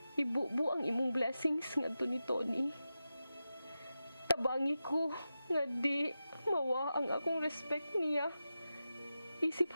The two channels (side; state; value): both; inverted; correlation -0.92